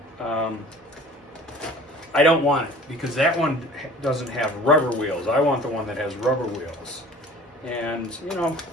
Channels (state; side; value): normal; both; correlation 0.46